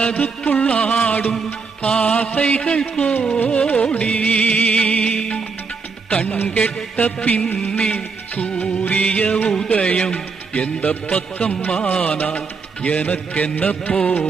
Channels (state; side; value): quieter; left; 4.9 dB